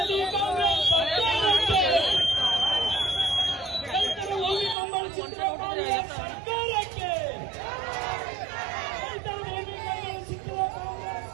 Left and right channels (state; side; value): drops out; left; at 4.8 s